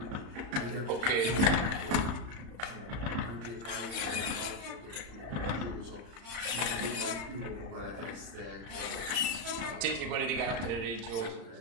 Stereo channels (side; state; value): left; late; 35 ms